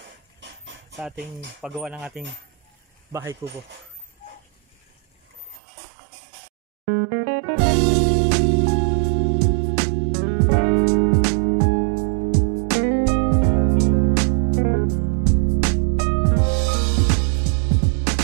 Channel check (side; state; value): left; drops out; at 5.6 s